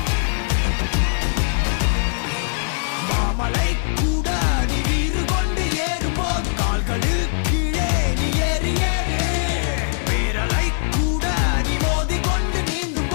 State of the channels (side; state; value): right; silent; digital silence